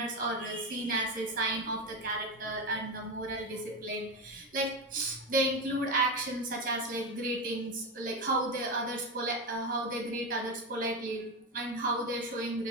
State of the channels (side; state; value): both; normal; correlation 0.15